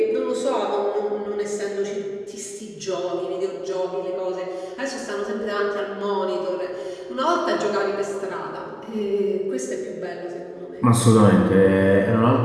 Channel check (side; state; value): both; identical; correlation 1.00